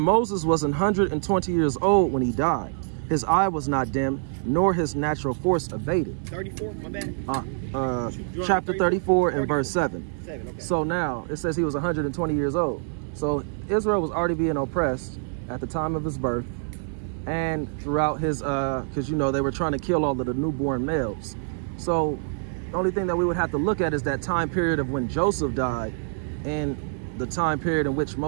was 120 years old when he died. His eye was not dim, nor his natural force abated. 34, my bad. Chapter 34 and verse 7. Okay. So now it says he was 120 years old. So Israel was already being oppressed at the time of his birth and throughout his, because, you know, they were trying to kill all of the newborn males. So the only thing that we would have to look at is that time period of when Joseph died and the time period in which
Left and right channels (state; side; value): silent; left; 60 dB below the other